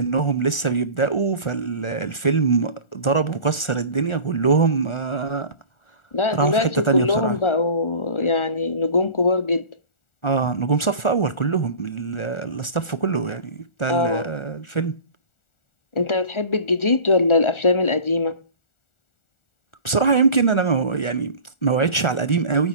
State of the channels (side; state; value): right; late; 1.4 ms